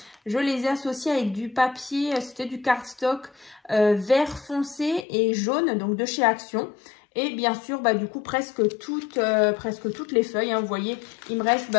Je les ai associés avec du papier, c'était du cardstock vert foncé et jaune, donc de chez Action. Et bien sûr, du coup, presque toutes les feuilles. Hein, vous voyez, il me reste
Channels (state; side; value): drops out; right; at 5.1 s